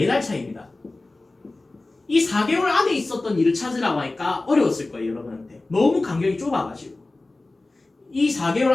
차이입니다. 이 4개월 안에 있었던 일을 찾으라고 하니까 어려웠을 거예요, 여러분한테. 너무 간격이 좁아가지고. 이 4개월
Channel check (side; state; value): right; quieter; 3.1 dB